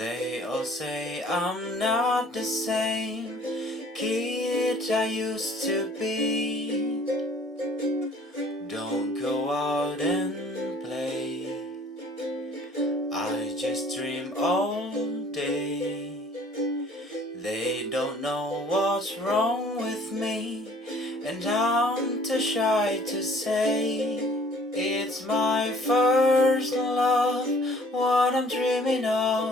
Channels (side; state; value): both; normal; correlation 0.54